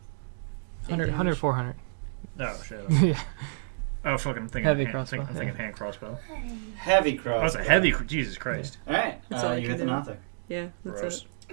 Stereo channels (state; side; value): silent; left; digital silence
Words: 100, 400. Oh shit. Okay. Yeah. Oh fucking I'm thinking Heavy hand, crossbow, I'm thinking hand crossbow. Heavy cross. Oh, it's a heavy. Jesus Christ. Alright, That's all I you can hit the do. Nothic. Yeah, that's Gross.